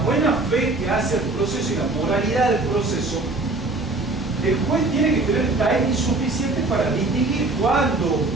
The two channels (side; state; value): left; quieter; 3.1 dB